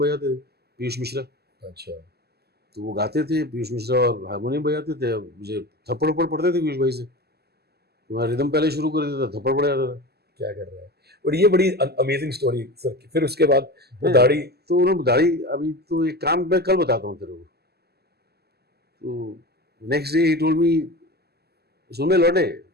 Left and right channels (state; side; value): late; left; 0.46 ms